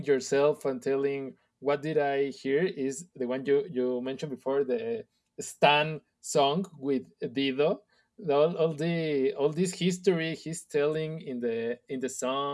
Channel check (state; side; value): identical; both; correlation 1.00